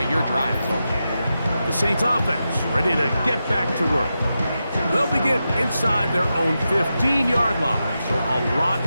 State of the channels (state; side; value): inverted; both; correlation -0.89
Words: your drive is over. The Saints offense ready to get back to work. They'll begin inside their own 15-yard line, so a lot